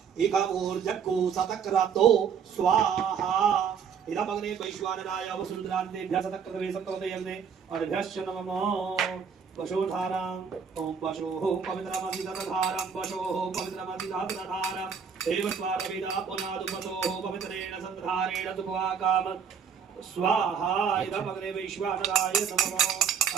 इकमूर्जक्कु सतक्रतो स्वाहा इदमग्ने वैश्वानराय वसुन्धरान्तेभ्यः सतक्रतवे सतक्रतयग्ने अर्भ्यश्च नमो वशोधारां ओम वशोः पवित्रमधिदधारं वशोः पवित्रमधिदधारं देवस्वारविदा पुनादुपतोः पवित्रेण सन्धारेण सुखवाकाम स्वाहा इदमग्ने वैश्वानराय नमो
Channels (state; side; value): quieter; left; 6.9 dB